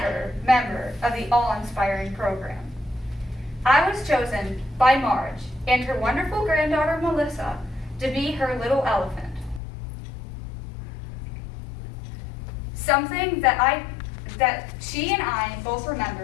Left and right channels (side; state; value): right; drops out; at 9.6 s